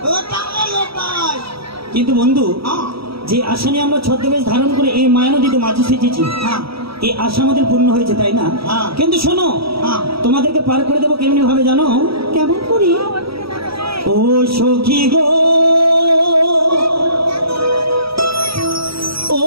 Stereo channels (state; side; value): late; left; 0.76 ms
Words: কিন্তু বন্ধু, যে আশা নিয়ে আমরা ছদ্মবেশ ধারণ করে এই মায়া নদীতে মাঝে সেচেছি, এই আশা আমাদের পূর্ণ হয়েছে, তাই না? কিন্তু শোনো, তোমাদেরকে পার করে দেবো কেমনি ভাবে জানো? কেমন করি? ও সখী গো, ও